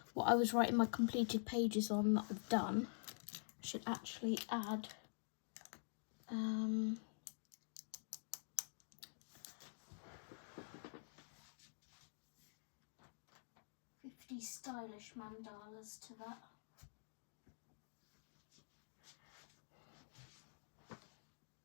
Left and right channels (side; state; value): right; silent; digital silence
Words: what I was writing my completed pages on that I've done. I should actually add 50 stylish mandalas to that.